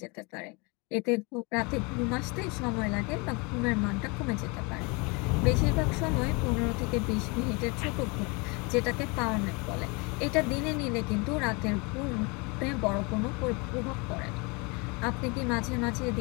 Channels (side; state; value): right; quieter; 29.3 dB